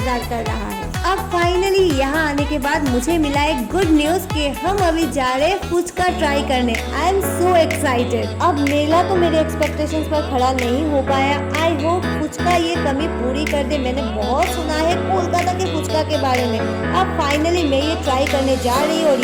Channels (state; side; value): identical; both; correlation 1.00